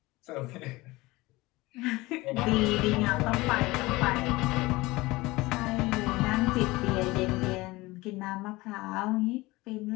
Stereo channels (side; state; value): right; quieter; 21.0 dB